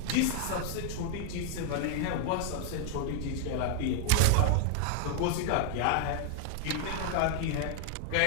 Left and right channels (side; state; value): both; different; correlation 0.00